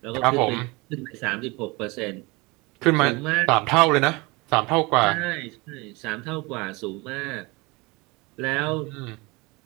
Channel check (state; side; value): quieter; left; 25.1 dB